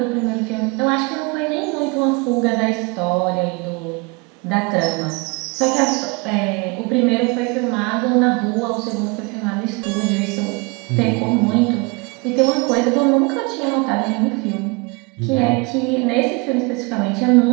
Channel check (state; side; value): quieter; left; 28.7 dB